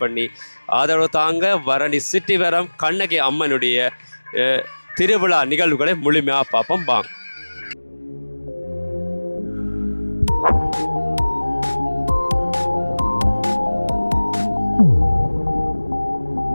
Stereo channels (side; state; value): both; inverted; correlation -1.00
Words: பண்ணி ஆதரவு தாங்க. பரணி சிட்டிவரம் கண்ணகி அம்மனுடைய திருவிழா நிகழ்வுகளை முழுமையாக பார்ப்போம் வாங்க.